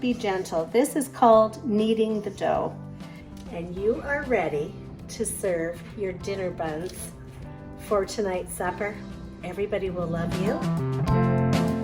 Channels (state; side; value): identical; both; correlation 1.00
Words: gentle. This is called kneading the dough. And you are ready to serve your dinner buns for tonight's supper. Everybody will love you.